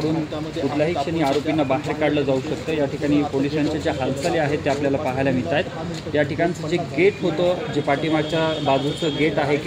कुठल्याही क्षणी आरोपींना बाहेर काढलं जाऊ शकतं। या ठिकाणी पोलिसांच्या ज्या हालचाली आहेत त्या आपल्याला पाहायला मिळत आहेत। या ठिकाणचं जे गेट होतं, जे पाठीमागच्या बाजूचं गेट आहे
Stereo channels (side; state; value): both; identical; correlation 1.00